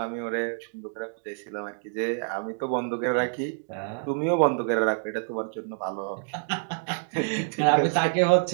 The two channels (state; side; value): silent; left; 60 dB below the other